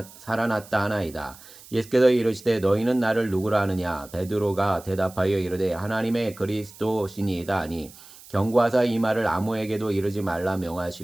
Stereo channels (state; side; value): noise; right; hiss, 20 dB below the sound